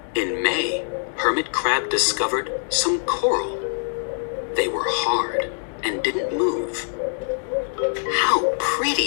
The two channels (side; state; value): right; silent; digital silence